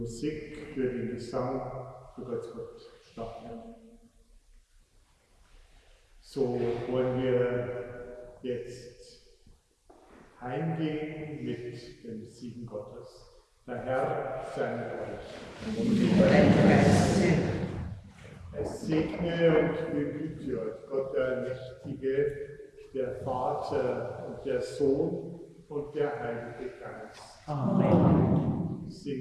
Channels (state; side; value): identical; both; correlation 1.00